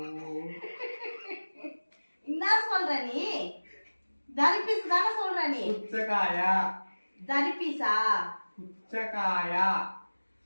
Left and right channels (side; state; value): both; inverted; correlation -1.00